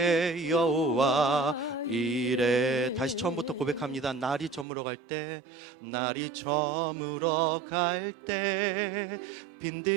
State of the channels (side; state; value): left; drops out; at 4.7 s